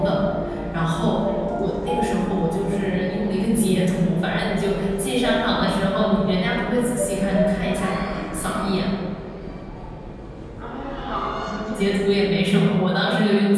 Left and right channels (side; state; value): both; identical; correlation 1.00